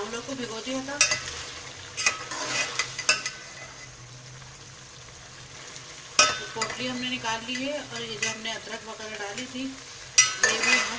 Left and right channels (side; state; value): both; identical; correlation 1.00